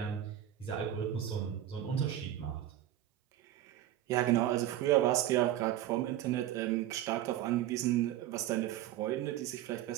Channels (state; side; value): quieter; left; 12.4 dB